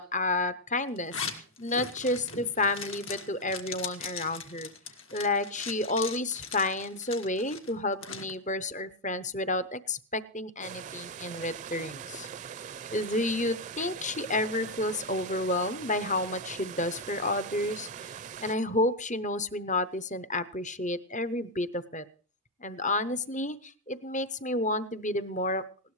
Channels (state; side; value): normal; both; correlation 0.04